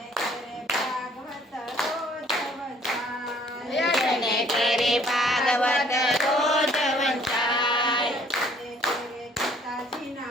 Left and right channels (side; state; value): both; normal; correlation 0.59